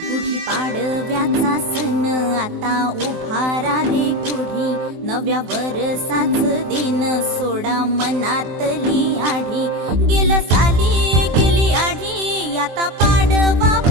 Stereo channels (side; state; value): left; late; 23 ms